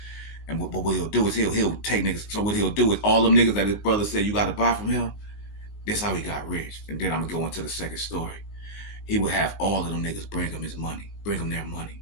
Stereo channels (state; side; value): late; right; 19 ms